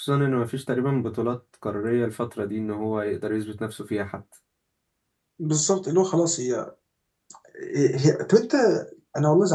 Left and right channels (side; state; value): both; identical; correlation 1.00